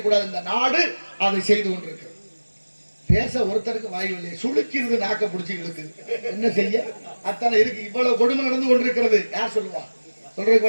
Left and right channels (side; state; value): both; inverted; correlation -1.00